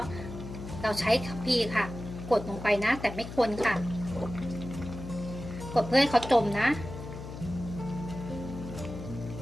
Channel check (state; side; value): noise; left; hum, 10 dB below the sound